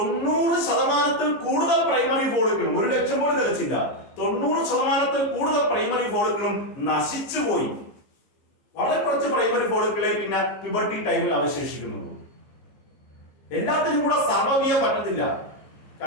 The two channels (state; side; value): late; right; 15 ms